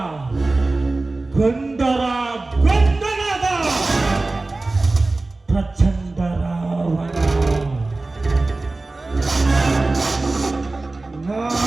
ಗಂಡರ ಗಂಡನಾದ ಪ್ರಚಂಡ ರಾವಣ.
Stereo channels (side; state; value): left; quieter; 3.2 dB